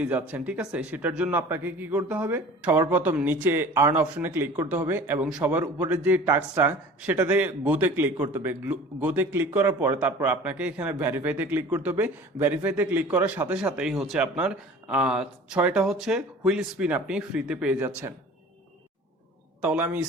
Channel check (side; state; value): both; normal; correlation 0.43